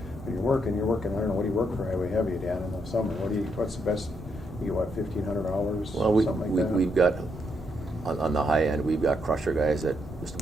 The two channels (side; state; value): both; normal; correlation 0.78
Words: When you're working. I don't know, what do you work for highway heavy, Dan, in the summer? What's the best? You get what, 1,500 hours? Well, something like that. we've got, on the high end, we've got crusher guys that just